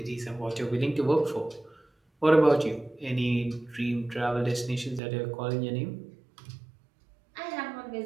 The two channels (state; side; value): drops out; left; at 5.0 s